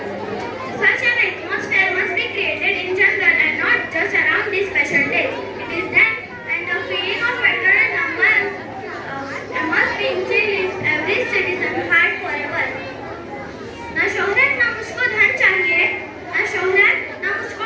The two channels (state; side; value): identical; both; correlation 1.00